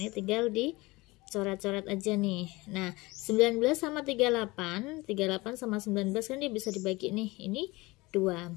tinggal dicoret-coret aja nih. Nah, 19 sama 38 sama 19 kan dia bisa dibagi nih. Ini 2.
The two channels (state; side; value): quieter; right; 22.3 dB